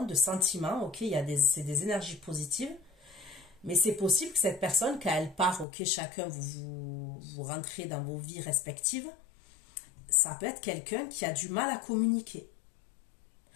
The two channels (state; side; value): drops out; right; at 5.7 s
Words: de sentiments, ok, c'est des énergies positives, mais c'est possible que cette personne, quand elle part, ok, chacun vous rentrez dans vos vies respectives, ça peut être quelqu'un qui a du mal à communiquer.